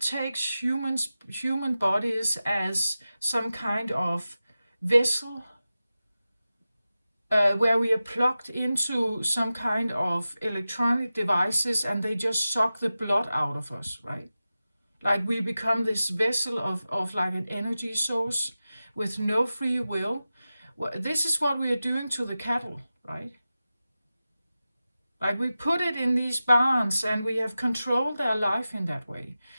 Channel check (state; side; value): inverted; both; correlation -0.94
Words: human bodies as some kind of vessel, where we are plugged into some kind of electronic devices, and they just suck the blood out of us, right? Like, we become this vessel of like an energy source with no free will. Well, this is what we are doing to the cattle, right? Like, we put it in these barns, and we have controlled their life in that way.